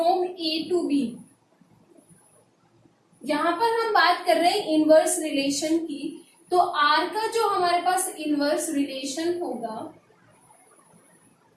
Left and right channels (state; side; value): identical; both; correlation 1.00